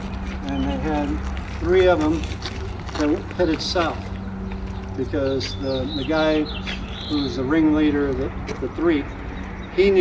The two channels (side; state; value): both; identical; correlation 1.00